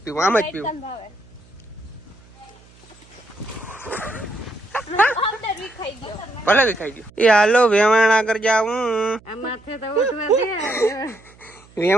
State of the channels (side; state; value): right; noise; hum, 26 dB below the sound